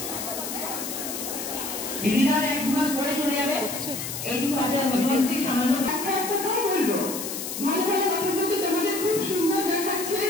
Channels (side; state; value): left; noise; hiss, 6 dB below the sound